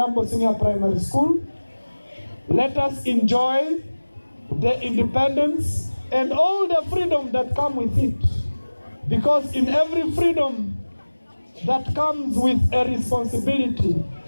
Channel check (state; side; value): inverted; both; correlation -1.00